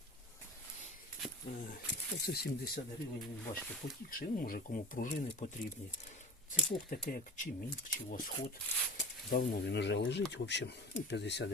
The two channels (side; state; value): both; normal; correlation 0.35